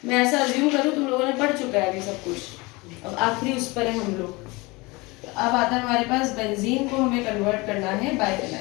मैं ऐसा अज्यूम करूँ तुम लोगों ने पढ़ चुका है अभी सब कुछ, अब आखिरी उस पर है हम लोग। अब आता है हमारे पास बेंजीन को हमें कन्वर्ट करना है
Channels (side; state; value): right; quieter; 24.3 dB